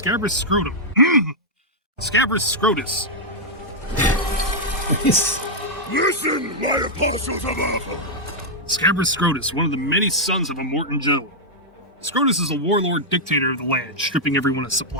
Scrotum. Scabrous Scrotus. Listen, my apostles of Earth! Scabrous Scrotus, one of the many sons of Immortan Joe. Scrotus is a warlord dictator of the land, stripping everyone of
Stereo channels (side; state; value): both; normal; correlation -0.05